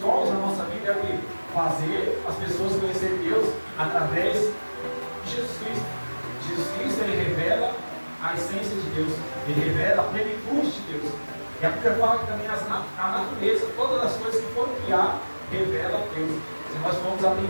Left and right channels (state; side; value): inverted; both; correlation -1.00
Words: na nossa vida é o quê? Fazer as pessoas conhecerem Deus através de Jesus Cristo. Jesus Cristo, ele revela a essência de Deus. Ele revela a plenitude de Deus. E a Bíblia fala que também a natureza, todas as coisas que foram criadas, revelam a Deus. Se nós vamos